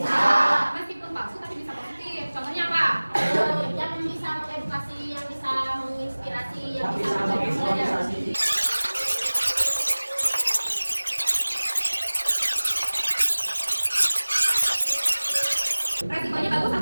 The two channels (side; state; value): both; inverted; correlation -1.00